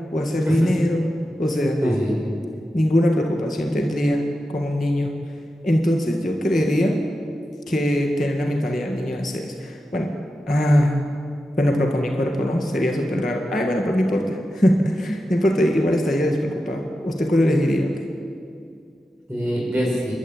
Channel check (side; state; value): both; normal; correlation 0.90